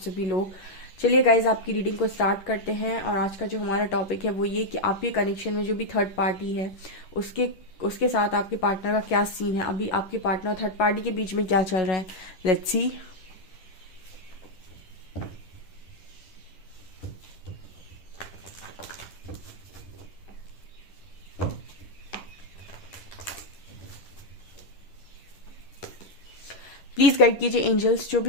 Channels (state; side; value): late; right; 10 ms